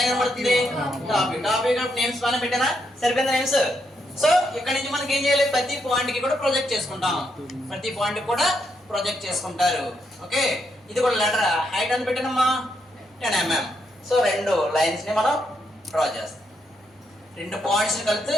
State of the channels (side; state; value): both; normal; correlation 0.79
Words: ఏం కనబడుతుంది? Top view. నేమ్స్ పైన పెట్టానా? సరిపోయిందా నేమ్స్? సో ఇక్కడ నుంచి మనకి ఏం చేయాలి? ప్రతి పాయింట్ కి కూడా ప్రొజెక్ట్ చేసుకుంటాం. ప్రతి పాయింట్ కూడా ప్రొజెక్ట్ చేసుకుంటారు. ఓకే, ఇది కూడా లెటర్ హైట్ అని పెట్టానమ్మా 10 mm. సో 2 లైన్స్ ని మనం డ్రా చేస్తాం. 2 పాయింట్స్ కలిసి